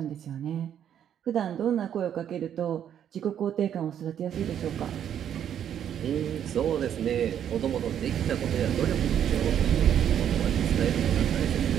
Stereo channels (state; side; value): quieter; left; 9.5 dB